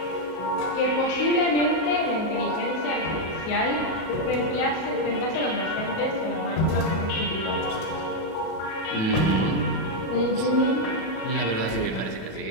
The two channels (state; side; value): late; right; 37 ms